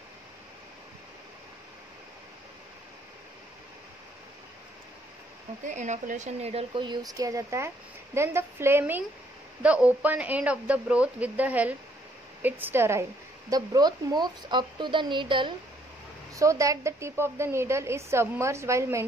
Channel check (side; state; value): both; normal; correlation 0.67